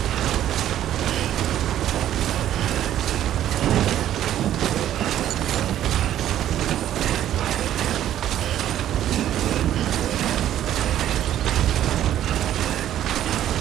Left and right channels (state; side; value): quieter; left; 11.7 dB